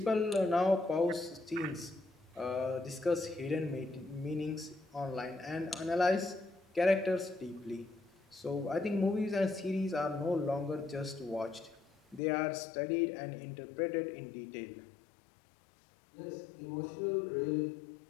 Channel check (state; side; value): drops out; right; at 12.2 s